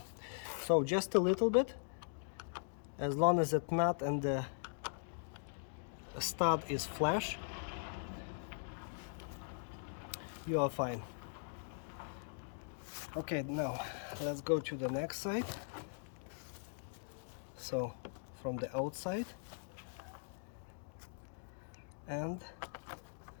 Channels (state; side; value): silent; right; digital silence